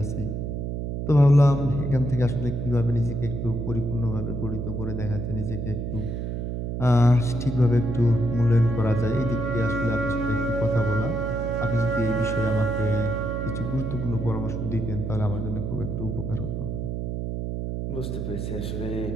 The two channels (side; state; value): right; noise; hum, 3 dB below the sound